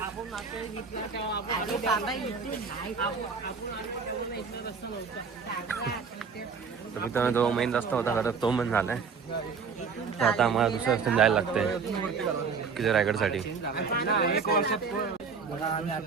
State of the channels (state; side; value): quieter; left; 5.5 dB